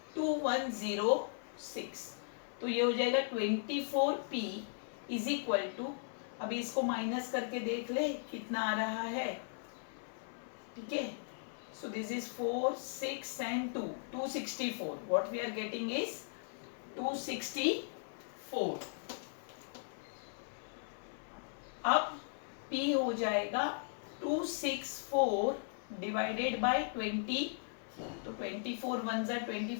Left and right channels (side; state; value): right; silent; 53 dB below the other